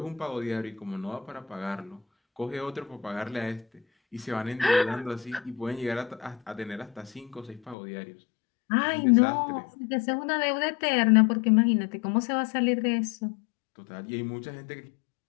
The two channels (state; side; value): drops out; right; at 7.8 s